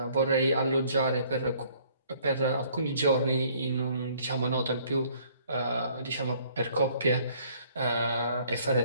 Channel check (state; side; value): inverted; both; correlation -0.60